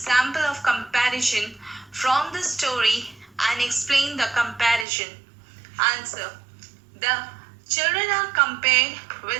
of comparison from the story and explain the comparison. Answer. The children are compared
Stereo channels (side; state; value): left; drops out; at 4.9 s